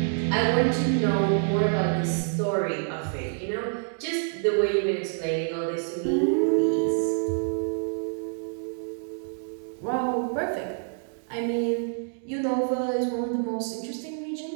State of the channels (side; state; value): left; silent; digital silence